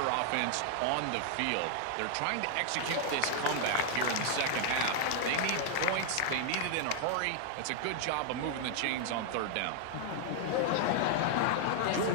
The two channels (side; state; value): both; different; correlation 0.00